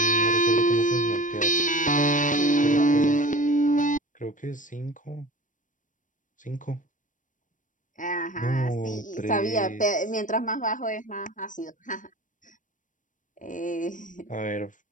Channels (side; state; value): right; late; 0.37 ms